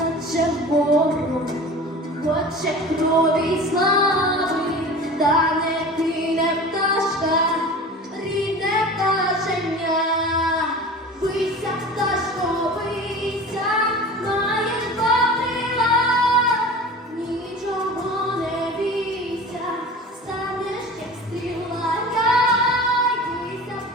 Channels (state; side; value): normal; both; correlation 0.37